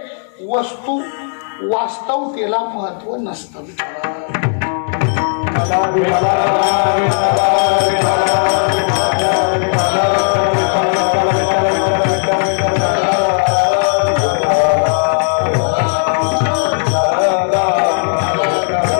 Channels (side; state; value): right; silent; 62 dB below the other